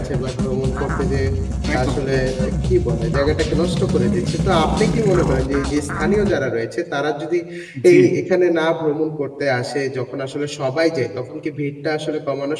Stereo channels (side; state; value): both; identical; correlation 1.00